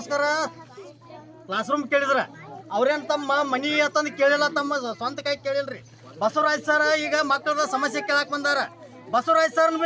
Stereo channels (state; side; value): identical; both; correlation 1.00